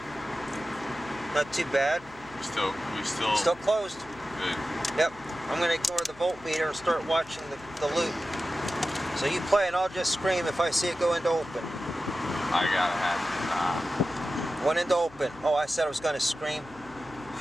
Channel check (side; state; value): left; noise; hum, 22 dB below the sound